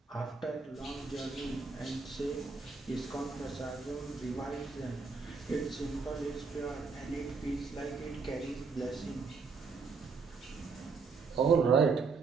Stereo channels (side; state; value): left; quieter; 4.8 dB